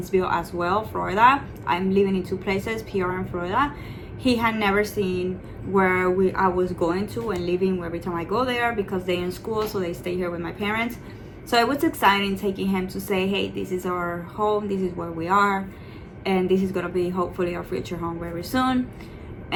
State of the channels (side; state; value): both; identical; correlation 1.00